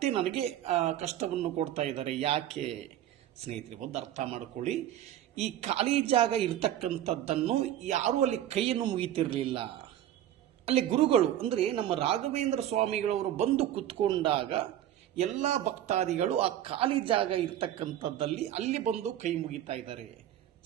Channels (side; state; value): left; quieter; 11.8 dB